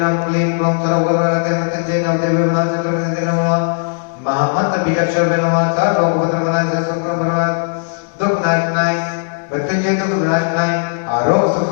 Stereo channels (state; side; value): silent; right; digital silence